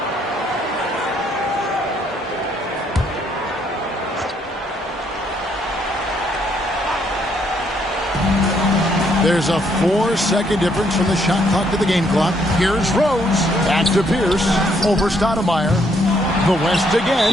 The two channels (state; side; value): normal; both; correlation 0.70